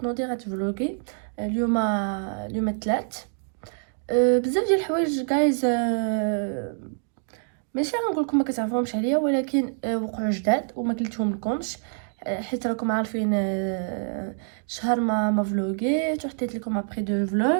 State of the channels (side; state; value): left; silent; 61 dB below the other